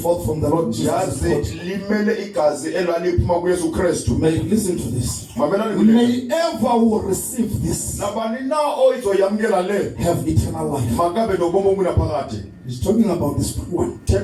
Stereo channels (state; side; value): identical; both; correlation 1.00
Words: from the Lord Jesus. May listen to this. May ever will receive this have eternal life. He's talking about this one.